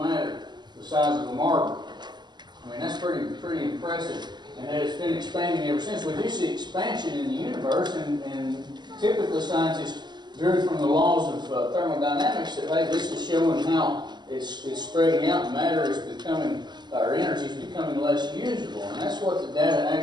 the size of a marble? I mean, that's pretty impressive. And it's been expanding ever since. We do see expansion in the universe, and typically scientists drew from the laws of thermodynamics that, hey, this is showing how it's spreading out, and matter is becoming, or energy is becoming less usable. And that's what the data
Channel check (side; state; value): left; late; 0.21 ms